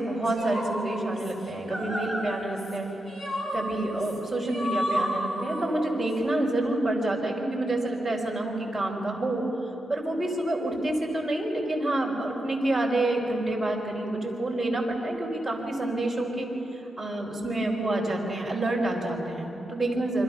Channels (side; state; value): both; normal; correlation 0.86